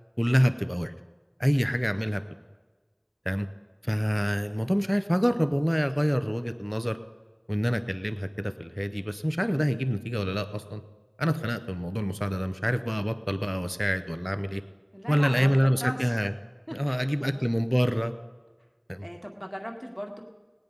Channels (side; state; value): both; identical; correlation 1.00